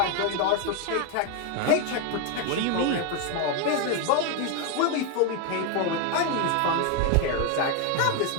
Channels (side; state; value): both; different; correlation 0.01